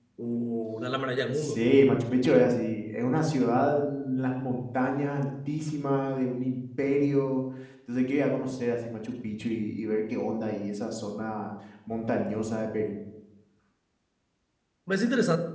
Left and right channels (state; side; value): identical; both; correlation 1.00